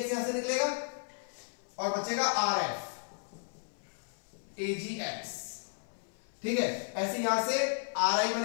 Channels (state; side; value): silent; right; 55 dB below the other